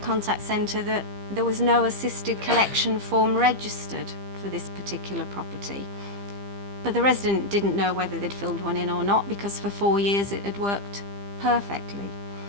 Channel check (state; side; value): late; left; 15 ms